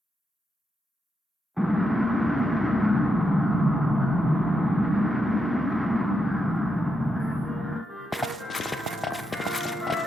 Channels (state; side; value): normal; both; correlation 0.84